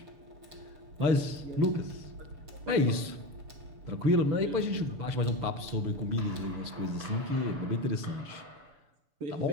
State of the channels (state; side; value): late; left; 6.8 ms